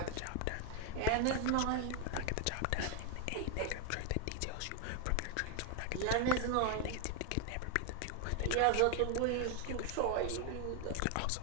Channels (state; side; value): different; both; correlation 0.01